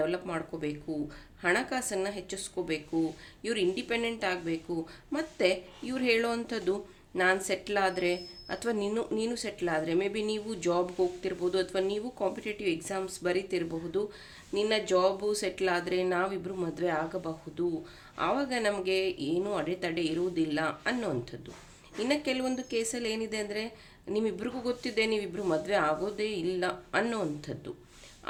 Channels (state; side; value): identical; both; correlation 1.00